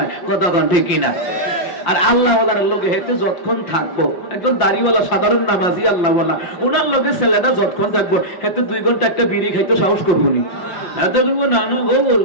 কতক্ষণ ঠিক কিনা। আর আল্লাহ ওয়ালার লোকে হেতে যতক্ষণ থাকবো, একজন দাড়িওয়ালা সাধারণ নামাজি আল্লাহ ওয়ালা, ওনার লোকে ছেলেটা যতক্ষণ থাকবো হেতে 2 ঘন্টা একটা বিড়ি খাইতে সাহস করবো নি। এত করবো না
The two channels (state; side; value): late; right; 5.7 ms